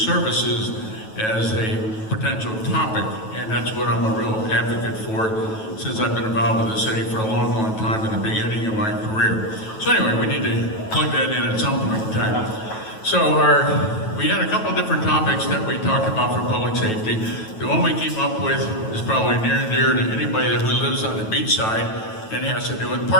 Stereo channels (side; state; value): right; late; 9.2 ms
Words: as a potential topic, and that's what I'm a real advocate for since I've been involved with the city for a long, long time in the beginning of my career. So anyway, we need to plug that in at some point in time. So we had a couple of different topics that we talked about for public safety. The one we came up with is probably near and dear to anybody who lives on the beach side, and it has to do with